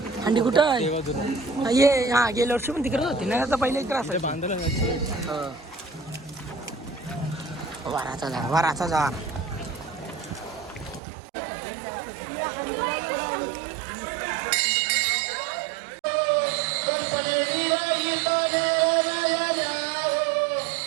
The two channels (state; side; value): drops out; left; at 11.0 s